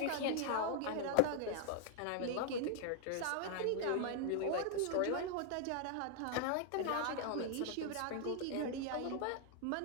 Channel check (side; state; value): both; different; correlation 0.00